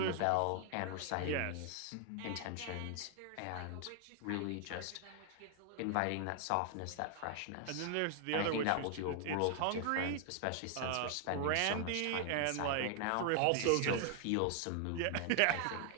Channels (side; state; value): both; different; correlation 0.00